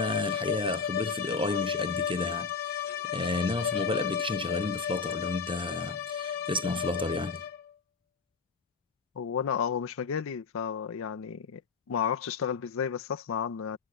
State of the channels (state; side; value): quieter; right; 4.9 dB